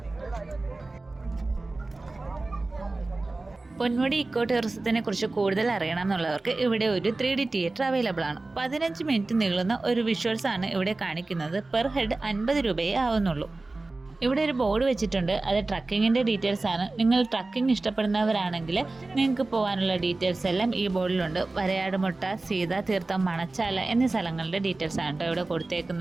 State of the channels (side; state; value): left; quieter; 3.2 dB